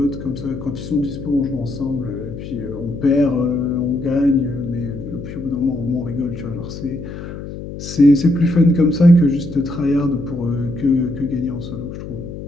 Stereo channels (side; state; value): left; noise; hum, 10 dB below the sound